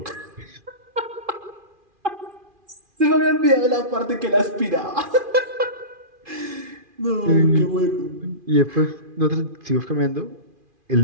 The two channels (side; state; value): left; late; 2.4 ms